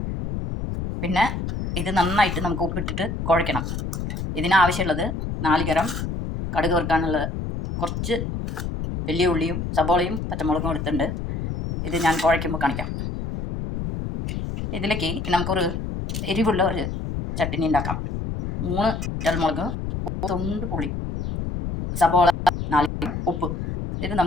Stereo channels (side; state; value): left; noise; rumble, 4 dB below the sound